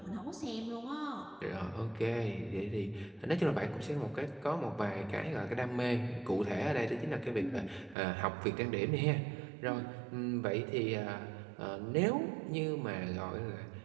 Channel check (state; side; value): drops out; left; at 8.0 s